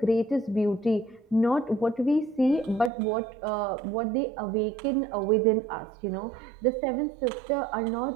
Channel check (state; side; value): drops out; left; at 2.9 s